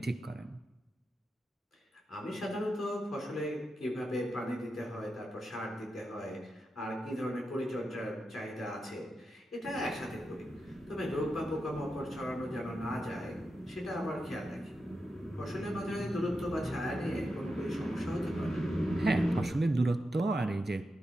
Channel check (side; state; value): both; normal; correlation 0.88